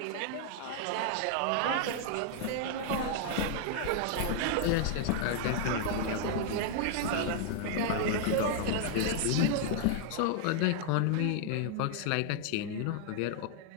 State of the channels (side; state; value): both; different; correlation 0.00